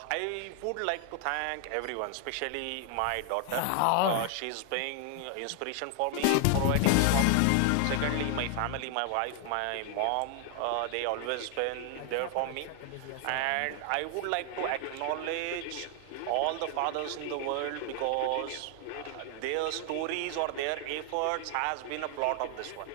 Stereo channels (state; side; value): different; both; correlation 0.00